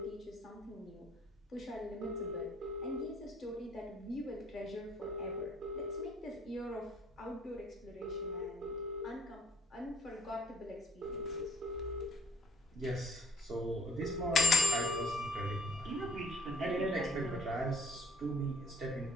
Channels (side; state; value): both; normal; correlation 0.63